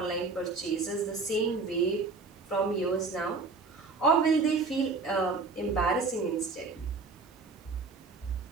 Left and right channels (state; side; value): quieter; left; 4.2 dB